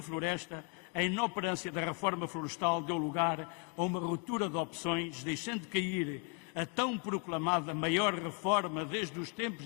a inoperância da reforma florestal deu lugar a uma ruptura de opções, deixando cair a tão proclamada maior reforma desde os tempos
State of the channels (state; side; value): quieter; right; 34.1 dB